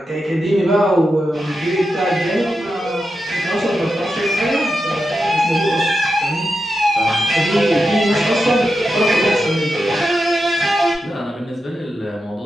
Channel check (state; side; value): normal; both; correlation 0.88